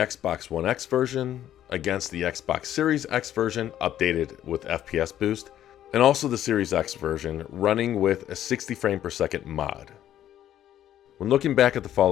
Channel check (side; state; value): right; quieter; 11.6 dB